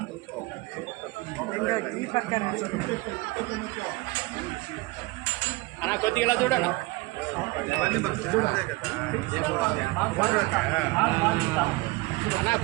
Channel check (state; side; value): quieter; left; 22.8 dB